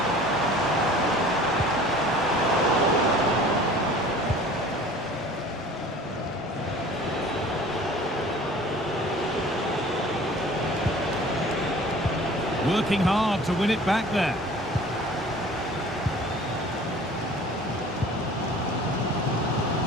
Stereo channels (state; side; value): normal; both; correlation 0.46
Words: Working hard to win it back there.